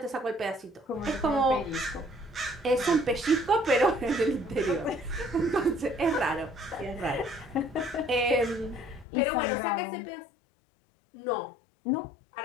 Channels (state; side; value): drops out; right; at 9.1 s